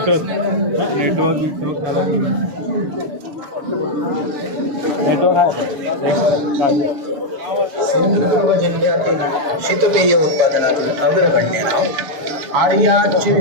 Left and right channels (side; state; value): left; late; 6.9 ms